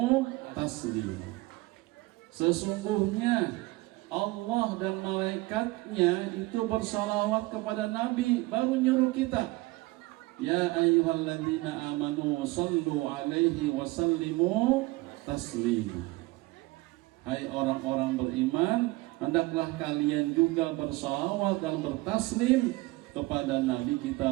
taslima. Sesungguhnya Allah dan malaikatnya itu bersalawat kepada Nabi, baru nyuruh kita ya ayyuhalladzina amanu sallu 'alaihi wa sallimu taslima. Hai orang-orang beriman, hendaklah kalian juga bersalawat dan bertaslim kepada Nabi kita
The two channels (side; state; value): left; quieter; 21.5 dB